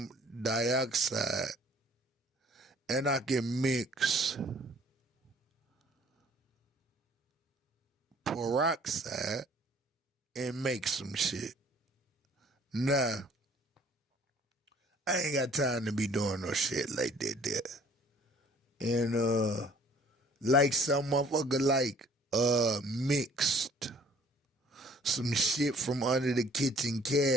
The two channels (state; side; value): normal; both; correlation 0.56